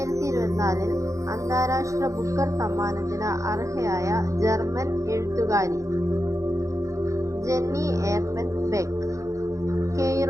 അന്താരാഷ്ട്ര ബുക്കർ സമ്മാനത്തിന് അർഹയായ ജർമ്മൻ എഴുത്തുകാരി ജെന്നി എർപൻ ബെക്ക്.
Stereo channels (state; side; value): late; left; 0.15 ms